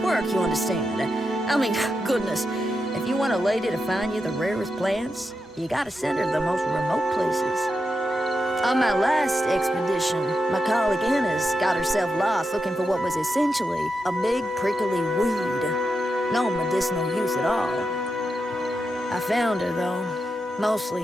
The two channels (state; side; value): normal; both; correlation 0.87